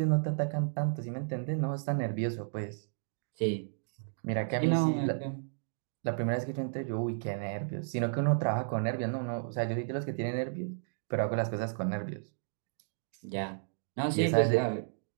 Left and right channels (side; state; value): left; silent; digital silence